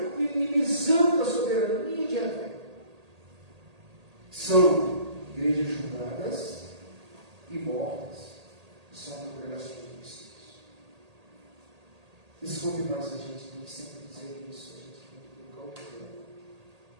minimizando a soberania de Yahvé. São igrejas julgadas e mortas, são congregações de cristãos. Desculpe mais a gente tem que sempre dizer isso, a gente tem que colocar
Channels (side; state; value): left; late; 1.8 ms